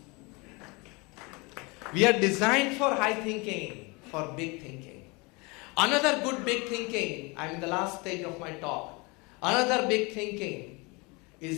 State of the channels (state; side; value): quieter; right; 27.3 dB